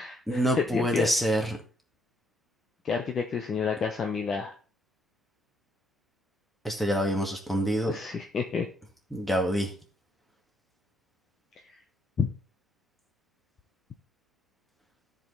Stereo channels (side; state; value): both; normal; correlation 0.72